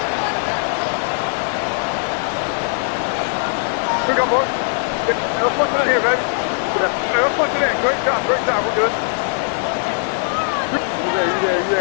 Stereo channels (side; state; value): right; silent; 60 dB below the other